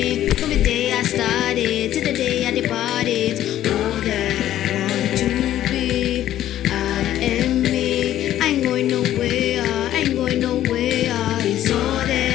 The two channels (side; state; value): right; quieter; 12.6 dB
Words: From the day I started to the day I departed. All that I want to be, I am me. I ain't going nowhere, I ain't going nowhere. It's all